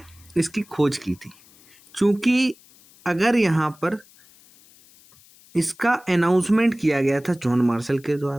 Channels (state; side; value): noise; left; hiss, 27 dB below the sound